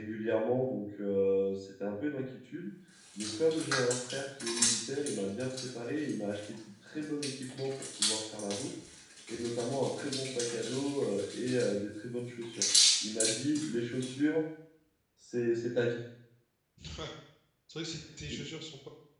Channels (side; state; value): both; identical; correlation 1.00